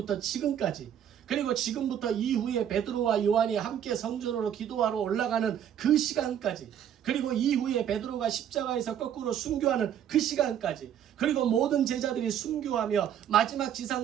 지금까지 그리고 지금부터 이후에 베드로와 요한이 함께 성전으로 기도하러 올라가는 그 시간까지 그리고 이후에 베드로가 십자가에서 거꾸로 순교하는 그 시간까지 그리고 모든 제자들이 순교하며 마지막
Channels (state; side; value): quieter; left; 9.6 dB